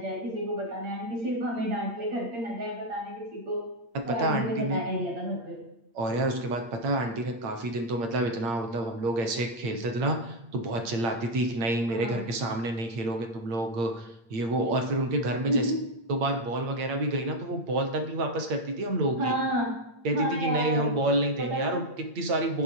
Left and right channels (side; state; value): left; late; 8.7 ms